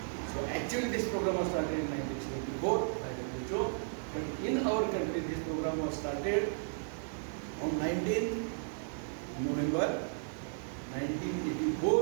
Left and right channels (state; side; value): silent; left; digital silence